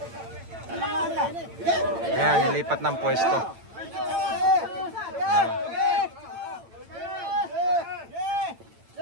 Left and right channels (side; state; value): left; late; 8.9 ms